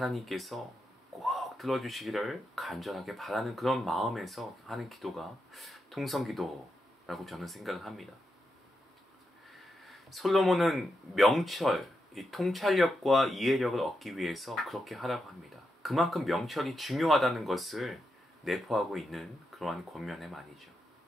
꼭 들어주시기를 간절하게 바라는 그런 마음에서 하는 기도가 통성기도라고 저는 생각을 합니다. 솔로몬은 명철, 이 통찰력과 이해력을 얻기 위해서 그렇게 하라고 합니다. 그만큼 명철이 중요하다는 것을 내포하고 있는 그러한 권면의 말이죠.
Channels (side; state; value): both; normal; correlation 0.85